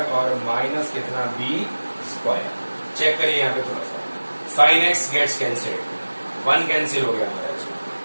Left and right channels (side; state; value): both; inverted; correlation -1.00